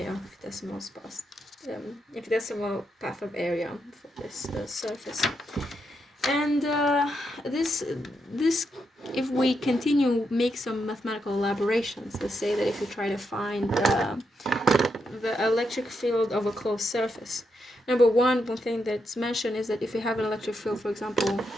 of infinitesimal path of area for this surface. And this, if we continue, make some mathematical elaborations. Let's say that if you try to find the electric field of a closed surface, one thing that's mentioned is that if you have an electric field, for example,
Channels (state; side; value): normal; both; correlation 0.82